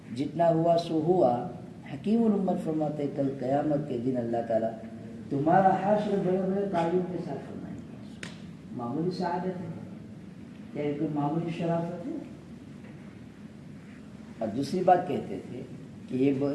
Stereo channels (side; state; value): both; identical; correlation 1.00